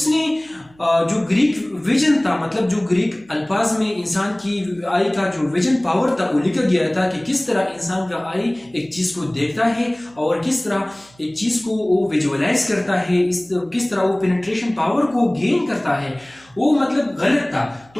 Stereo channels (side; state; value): right; noise; hum, 29 dB below the sound